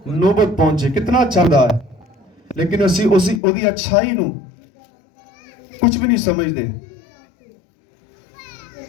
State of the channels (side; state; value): right; drops out; at 3.4 s